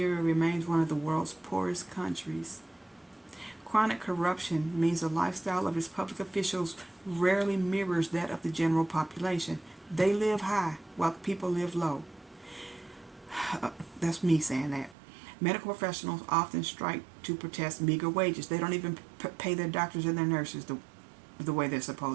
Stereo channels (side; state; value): left; drops out; at 15.0 s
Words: remains one of the world's poorest countries. Chronic corruption means the lifestyle of its public officials rarely mirrors that of the general population. They live high while people live low. That's me saying that. Medical professionals often strike to protest meager wages. They don't even pay their doctors and their nurses the way they're